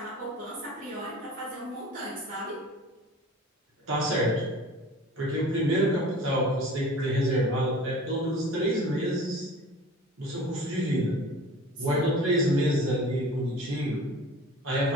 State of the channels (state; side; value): normal; both; correlation 0.42